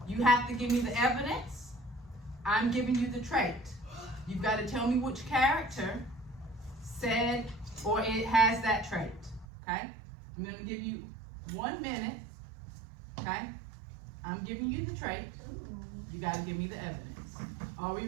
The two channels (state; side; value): drops out; left; at 9.5 s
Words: You have to give me the evidence, I'm giving you the trait. You've got to tell me which character said or it has that trait. Okay? I'm going to give you 1 minute. Okay? I'm giving you the trait. You got to give me the evidence. Are we